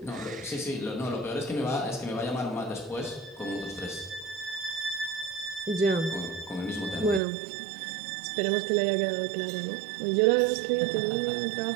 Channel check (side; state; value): left; drops out; at 7.2 s